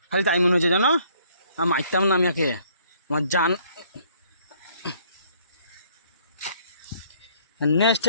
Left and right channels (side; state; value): both; inverted; correlation -0.62